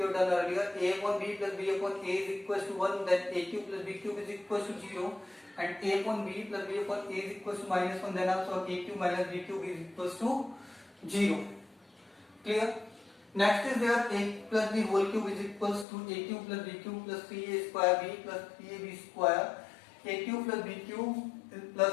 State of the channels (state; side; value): drops out; right; at 15.9 s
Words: have done earlier. A upon b plus b upon a is equals to 1, then a cube plus b cube is equals to 0, and a upon b plus b upon a is equals to minus 1, then also a cube minus b cube is equals to 0. Clear? Next is there a plus b whole cube is equals to a cube plus b cube plus 3a square b plus 3ab square a cube plus b cube plus